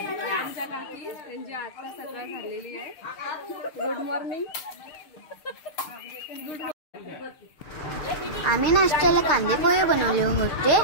Good morning. आम्ही नाश्त्याला कांदे पोहे बनवले होते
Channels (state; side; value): late; right; 6.7 ms